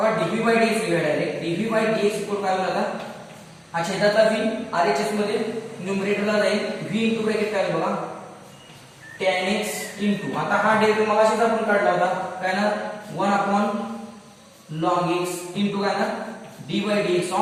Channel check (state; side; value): identical; both; correlation 1.00